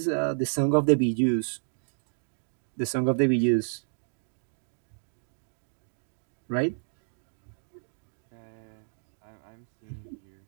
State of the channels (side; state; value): left; silent; digital silence